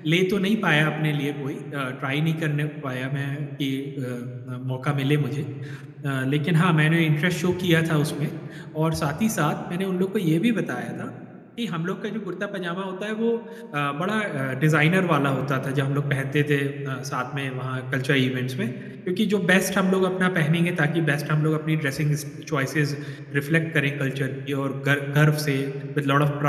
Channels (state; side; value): identical; both; correlation 1.00